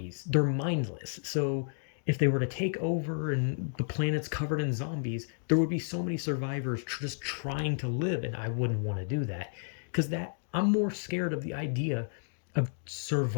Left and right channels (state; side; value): silent; right; digital silence